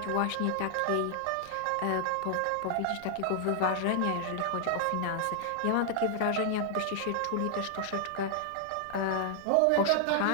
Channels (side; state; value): both; different; correlation 0.00